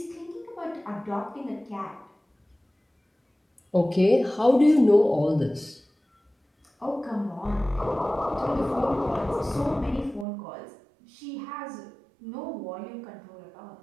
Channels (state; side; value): drops out; left; at 10.2 s